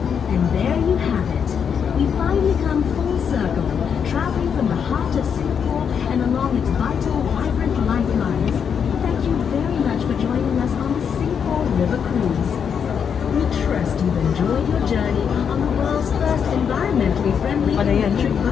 And there you have it. We finally come full circle, traveling from the heart of Singapore and along its vital, vibrant lifelines. Thank you very much for joining us on the Singapore River Cruise. We trust you've enjoyed your journey on the world's first environmentally friendly electric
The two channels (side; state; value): right; quieter; 7.3 dB